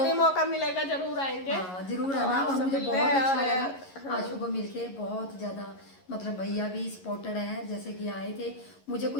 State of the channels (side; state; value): right; late; 11 ms